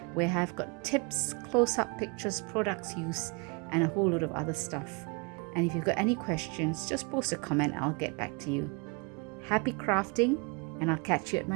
where I've got tips, close-up pictures, products used, and a whole lot of other stuff. And if you've got any questions, just post a comment, I'll get back to you. Happy crafting, and I'll catch you at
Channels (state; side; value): quieter; left; 31.6 dB